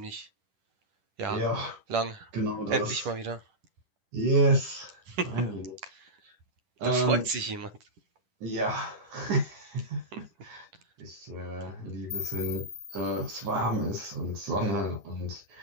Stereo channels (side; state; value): left; late; 10 ms